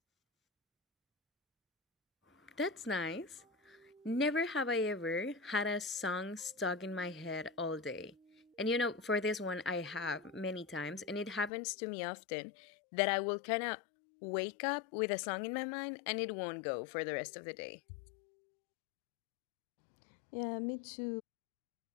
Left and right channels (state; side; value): drops out; right; at 11.5 s